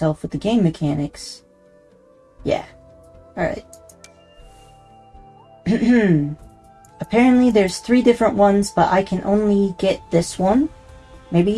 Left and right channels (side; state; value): both; identical; correlation 1.00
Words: with the game mechanics. Yeah. Alright. Apparently there's 3 different ones, but I can only get this one. Maybe